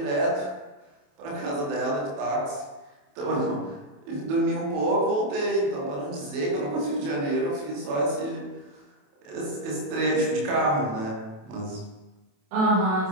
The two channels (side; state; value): left; late; 28 ms